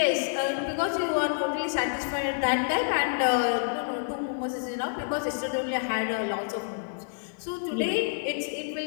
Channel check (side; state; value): right; silent; digital silence